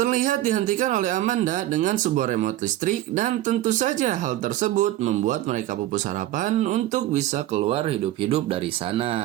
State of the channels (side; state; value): left; quieter; 14.4 dB